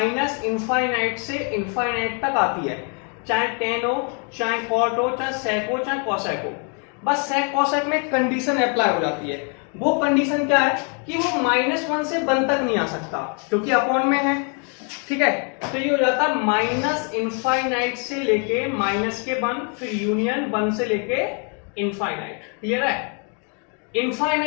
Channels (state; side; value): quieter; right; 39.2 dB